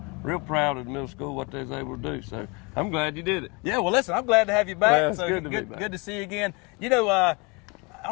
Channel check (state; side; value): quieter; right; 29.3 dB